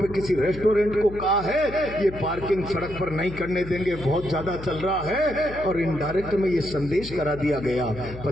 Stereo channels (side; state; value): left; noise; hum, 13 dB below the sound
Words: पे किसी रेस्टोरेंट को कहा है ये पार्किंग सड़क पर नहीं करने देंगे, बहुत ज्यादा चल रहा है, और इनडायरेक्ट में ये संदेश करा दिया गया